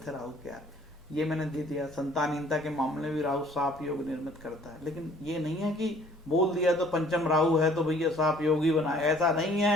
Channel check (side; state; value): both; normal; correlation 0.56